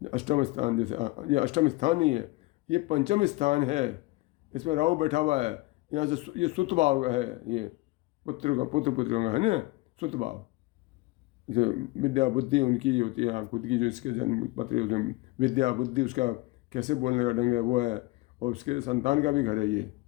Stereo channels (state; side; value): quieter; right; 20.6 dB